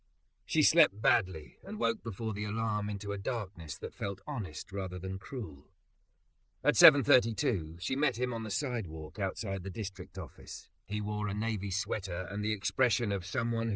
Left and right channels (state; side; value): identical; both; correlation 1.00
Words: She slept badly and woke before the alarm into a darkness that felt honest rather than cruel. At 7:32, she met him on the sidewalk outside the district office. He wore a navy sweater and the expression of someone